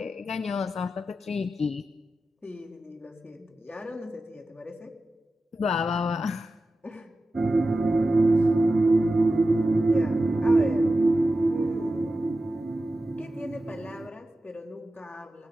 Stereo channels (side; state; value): both; normal; correlation 0.93